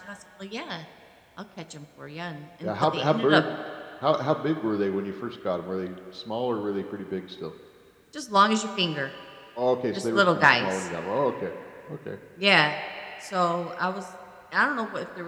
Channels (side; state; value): both; identical; correlation 1.00